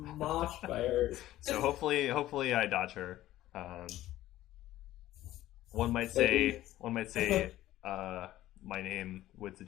by her. So hopefully I dodge her. One might say, my name would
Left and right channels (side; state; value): right; quieter; 14.8 dB